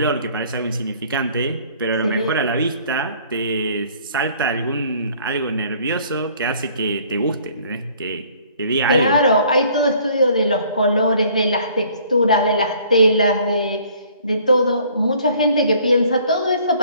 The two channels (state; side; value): inverted; both; correlation -0.57